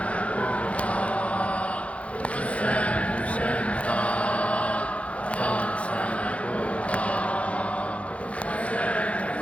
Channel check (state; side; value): late; right; 0.063 ms